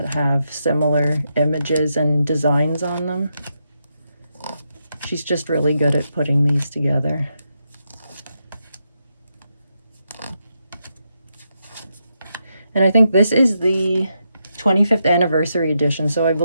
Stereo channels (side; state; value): both; inverted; correlation -0.83